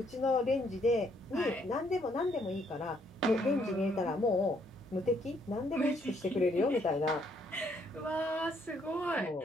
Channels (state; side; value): noise; right; hum, 26 dB below the sound